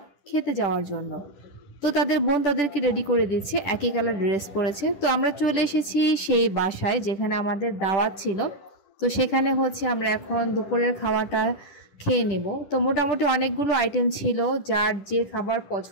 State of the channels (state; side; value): late; right; 10 ms